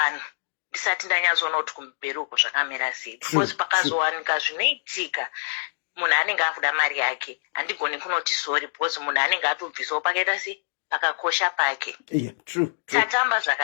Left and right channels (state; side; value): silent; right; digital silence